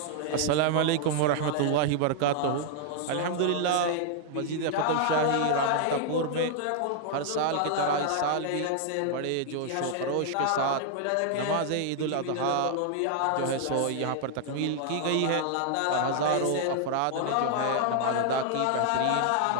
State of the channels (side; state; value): both; different; correlation 0.00